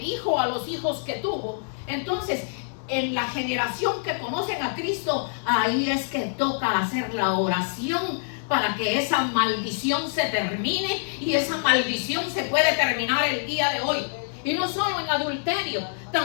hijo a los hijos que tuvo, entonces en la generación que conocen a Cristo, ahí es que toca hacer la oración para que esa maldición se termine, y esa maldición se puede terminar el día de hoy. Y no solo en adulterio,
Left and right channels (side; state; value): right; silent; digital silence